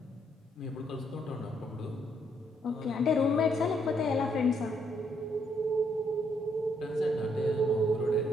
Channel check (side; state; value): both; normal; correlation 0.72